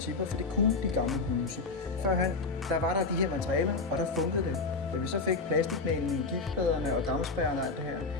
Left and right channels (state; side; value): quieter; right; 4.0 dB